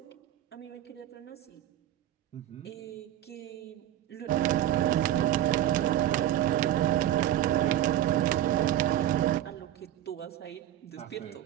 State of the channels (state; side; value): quieter; left; 12.4 dB